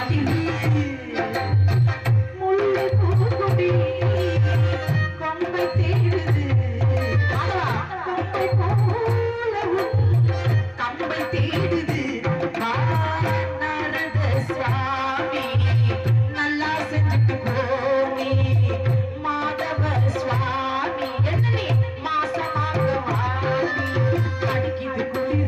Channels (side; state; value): both; identical; correlation 1.00